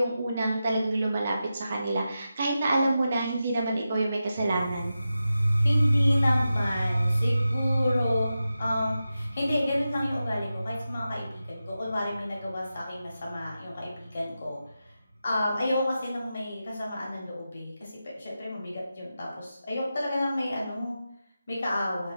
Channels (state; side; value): inverted; both; correlation -0.91